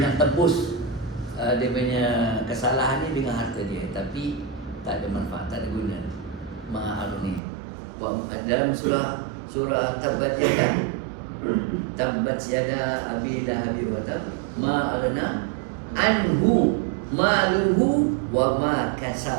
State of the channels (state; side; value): drops out; left; at 7.4 s